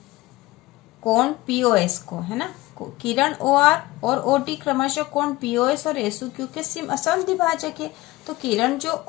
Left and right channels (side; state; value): right; quieter; 19.0 dB